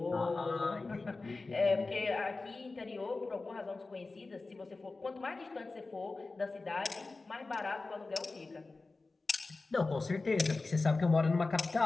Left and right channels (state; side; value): quieter; right; 3.6 dB